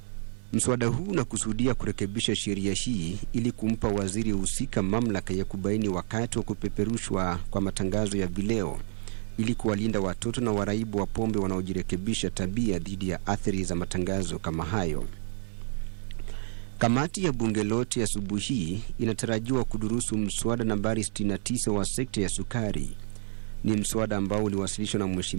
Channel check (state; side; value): silent; left; 59 dB below the other